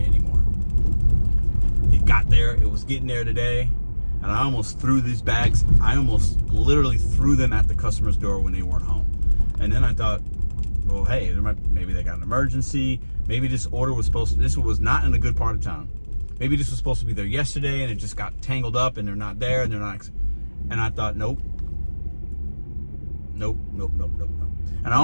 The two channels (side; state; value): both; inverted; correlation -1.00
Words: anymore. It got there. It was getting there today. And I almost threw these bags. I almost literally threw them at the customer's door when they weren't home. And then I thought, well, hey, maybe they got an emergency. Maybe this order was this was not in a good part of town. Maybe this was supposed to be there yesterday and it just got tangled up and they're not there and they're not. And I thought, nope. And I